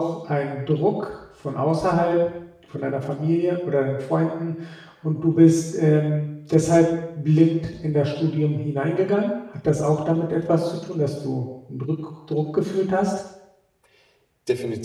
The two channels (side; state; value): both; identical; correlation 1.00